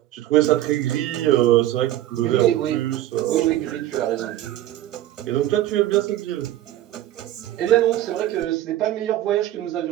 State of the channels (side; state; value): left; quieter; 13.8 dB